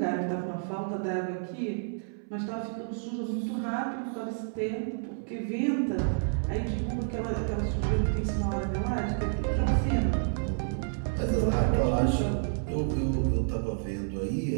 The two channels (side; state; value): left; silent; 58 dB below the other